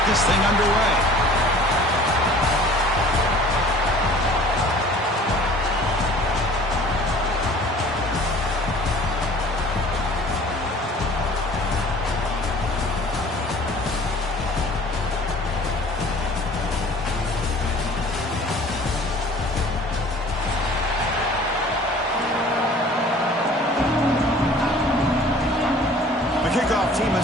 this thing underway. Kickoff team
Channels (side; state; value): both; normal; correlation 0.48